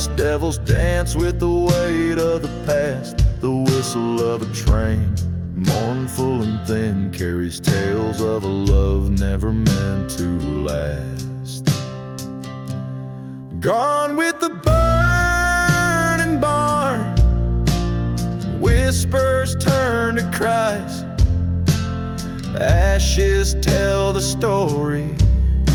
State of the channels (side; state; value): both; identical; correlation 1.00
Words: devils dance with the weight of the past. The whistle of a train, mournful and thin, carries tales of a love never meant to last. Gone with the burning barn, whispers turn to cries. Ashes tell the story